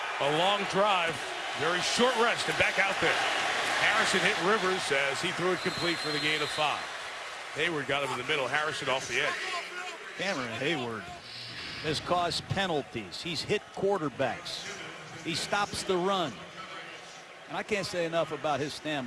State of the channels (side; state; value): both; identical; correlation 1.00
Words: a long drive. Very short rest and back out there. Harrison hit Rivers as he threw it complete for the gain of 5. Hayward got him in the middle. Harrison off the edge. Cameron Hayward has caused penalties. He's hit quarterbacks. He stops the run. And I can't say enough about his